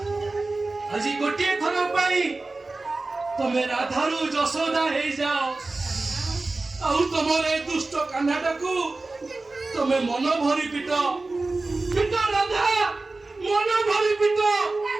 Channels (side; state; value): left; quieter; 3.3 dB